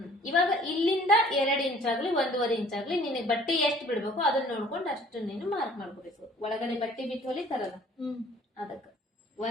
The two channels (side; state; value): both; normal; correlation 0.53